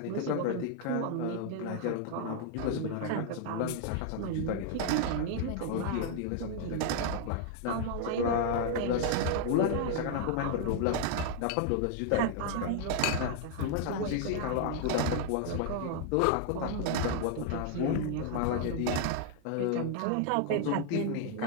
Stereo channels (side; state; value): both; different; correlation 0.00